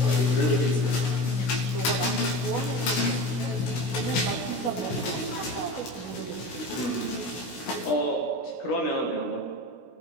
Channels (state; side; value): late; right; 16 ms